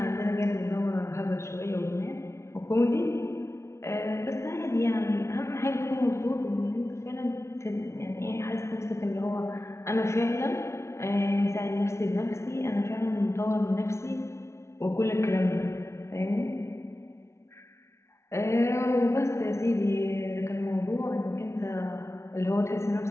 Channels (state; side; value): late; right; 0.13 ms